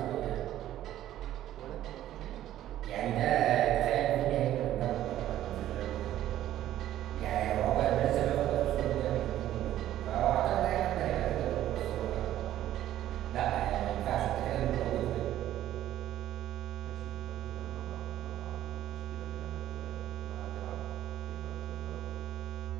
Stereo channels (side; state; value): left; quieter; 12.9 dB